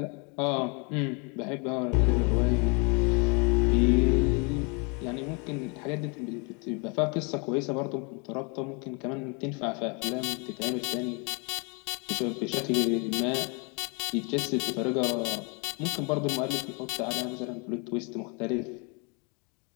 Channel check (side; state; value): right; quieter; 33.2 dB